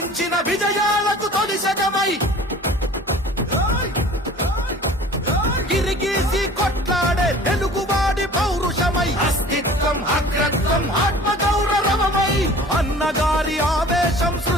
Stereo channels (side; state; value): both; normal; correlation 0.45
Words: విజయాలకు తొలి శకమై గిరిగీసి కొట్లాడే తెలుగువాడి పౌరుషమై అస్తిత్వం అగ్రత్వం ఆత్మగౌరవమై అన్నగారి ఆవేశం